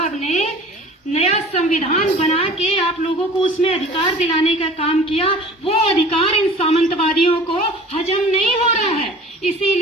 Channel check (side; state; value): both; normal; correlation 0.44